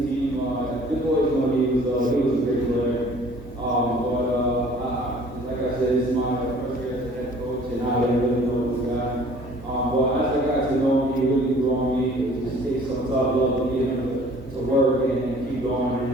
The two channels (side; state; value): both; normal; correlation 0.52